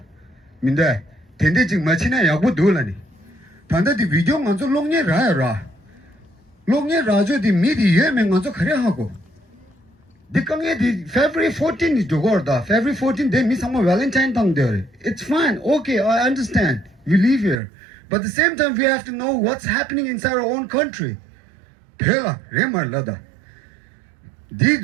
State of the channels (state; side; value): drops out; left; at 17.6 s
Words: minde tende jing machina yabu dolani tanda di video nganzo longne ra longne rajo di midi yeme nganzo khare hago the February 14 is Jogorda. February 14 they miss some Valentine tongue there. It's fine, okay, I understand. We live here. But at the same time we have to know what's happening inside our own country. Pela, Remar Lada. The